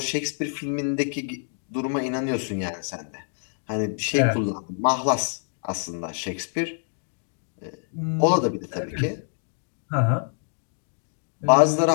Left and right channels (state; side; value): silent; right; digital silence